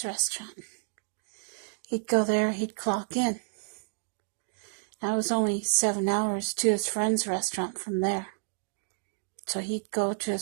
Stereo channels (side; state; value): left; silent; 58 dB below the other